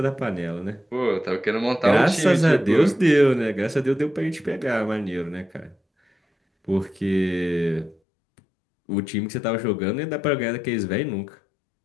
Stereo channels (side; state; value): right; drops out; at 8.0 s